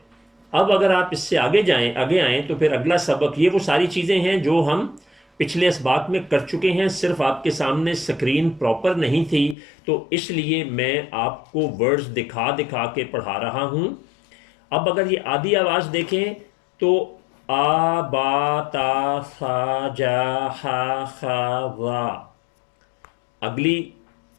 اب اگر آپ اس سے آگے آئیں تو پھر اگلا سبق، یہ وہ ساری چیزیں ہیں جو ہم پچھلے اسباق میں کر چکے ہیں، صرف آپ کے سامنے سکرین پراپر نہیں تھی تو اس لیے میں آپ کو ورڈز دکھا دکھا کے پڑھا رہا ہوں۔ اب اگر یہ آدھی آواز دیکھیں تو آ با تا سا جا ہا خا را، اگلی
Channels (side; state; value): right; drops out; at 9.6 s